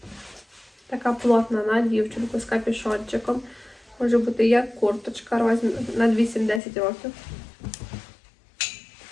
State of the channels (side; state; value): right; drops out; at 6.6 s